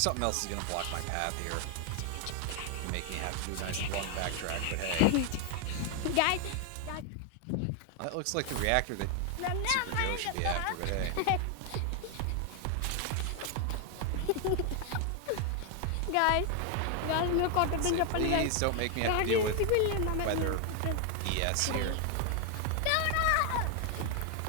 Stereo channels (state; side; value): different; both; correlation 0.00